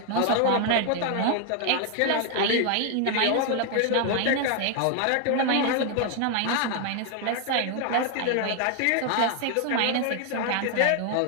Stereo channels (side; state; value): both; different; correlation 0.00